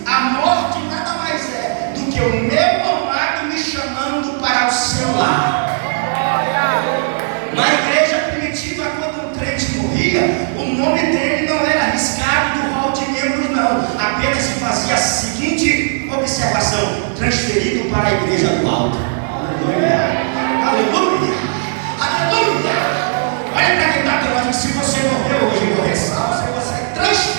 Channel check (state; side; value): silent; left; digital silence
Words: a morte nada mais é do que o meu amado me chamando para o seu lar. Na igreja primitiva, quando um crente morria, o nome dele não era arriscado do rol de membros, não. Apenas se fazia a seguinte observação: transferido para a igreja do alto. Aleluia! Aleluia! Aleluia! Olha para quem está falando: se você morreu hoje e morrer salvo, você é